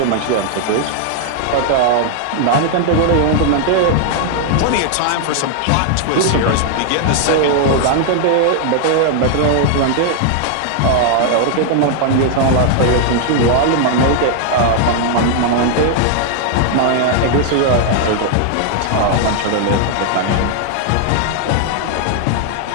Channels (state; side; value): different; both; correlation 0.00